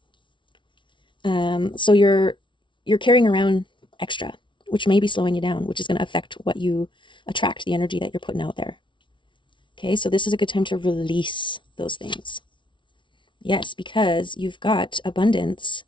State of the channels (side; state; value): right; late; 0.24 ms